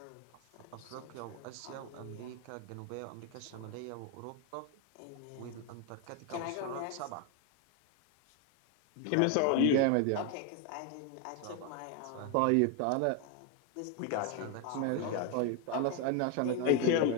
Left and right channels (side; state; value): both; different; correlation 0.01